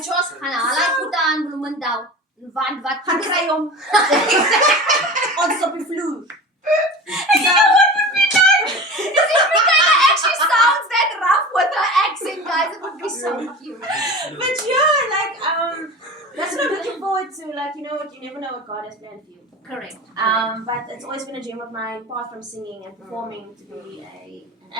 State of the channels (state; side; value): normal; both; correlation 0.33